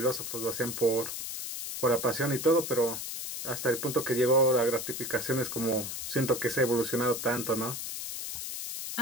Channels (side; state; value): left; noise; hiss, 6 dB below the sound